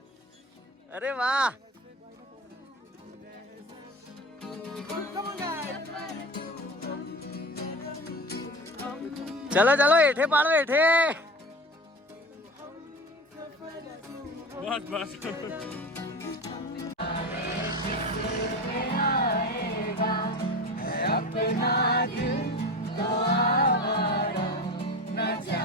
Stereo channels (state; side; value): normal; both; correlation 0.31